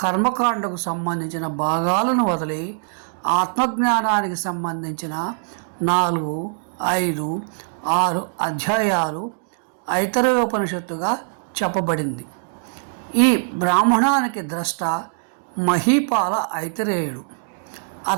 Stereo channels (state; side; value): silent; left; digital silence